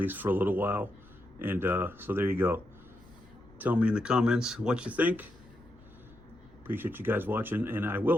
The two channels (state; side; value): noise; left; rumble, 24 dB below the sound